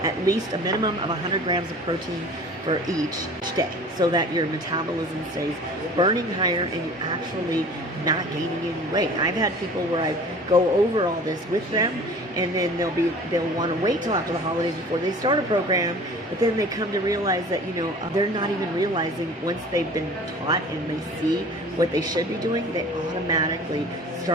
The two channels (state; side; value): normal; both; correlation 0.44